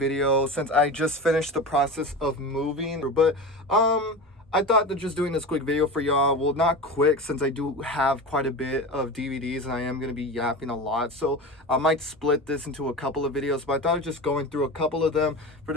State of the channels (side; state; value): both; normal; correlation 0.27